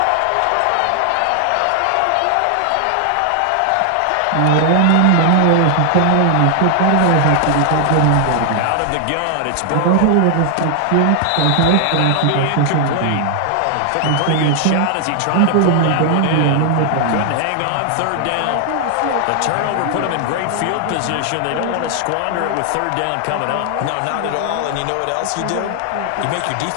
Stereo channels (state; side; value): different; both; correlation 0.00